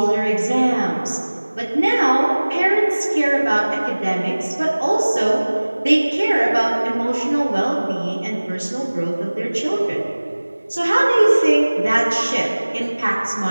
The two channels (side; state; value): both; inverted; correlation -1.00